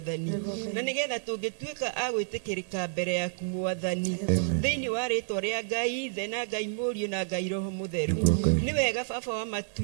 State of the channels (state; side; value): silent; left; digital silence